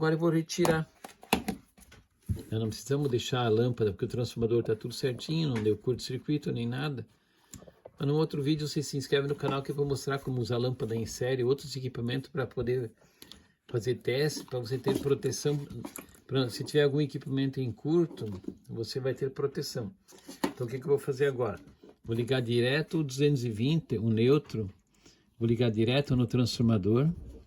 eu vou retirar. Nós não precisamos deixar a lâmpada, porque o transformador está tudo certinho, não deu curto-circuito nem nada. Mas no outro vídeo você se inscreve no canal que eu vou mostrar como usar lâmpada em série, outros equipamentos para poder fazer teste, para você ter proteção. Se tiver algum equipamento em curto, você vai ter proteção. Então o que eu vou fazer agora? Vou ligar direto o 220, o neutro. Vou ligar direto no transformador.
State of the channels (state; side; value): identical; both; correlation 1.00